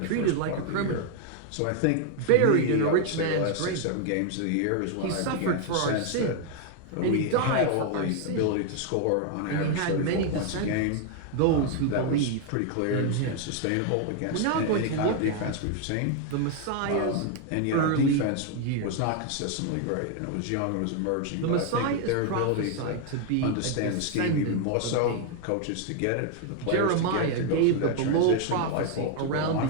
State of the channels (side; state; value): both; different; correlation 0.00